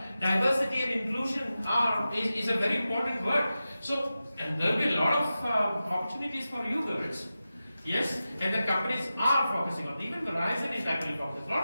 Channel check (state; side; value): inverted; both; correlation -0.93